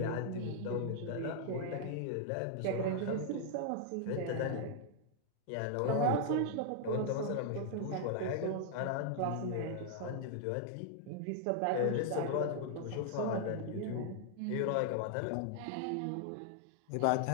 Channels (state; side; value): different; both; correlation 0.00